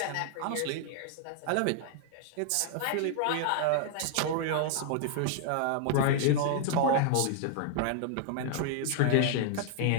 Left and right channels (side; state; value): both; different; correlation 0.00